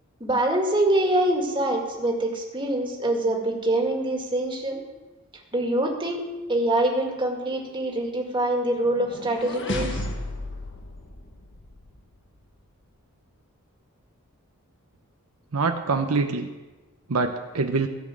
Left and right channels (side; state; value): both; normal; correlation 0.44